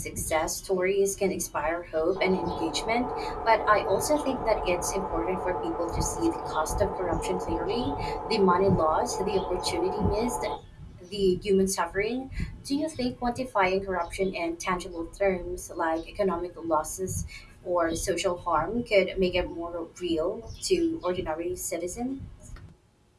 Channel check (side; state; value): both; identical; correlation 1.00